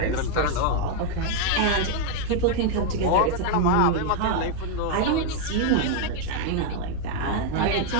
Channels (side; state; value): both; different; correlation 0.00